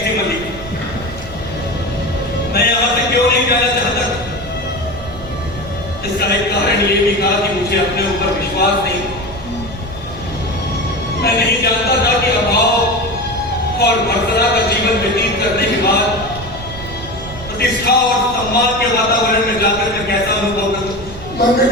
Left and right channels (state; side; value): noise; right; rumble, 13 dB below the sound